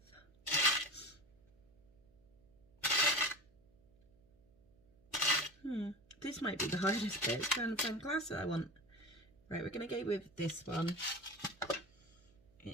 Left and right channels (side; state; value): right; noise; hum, 29 dB below the sound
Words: this might be the hardest bit. It's trying to find the clasp that I want. Right, we're going to go with this one.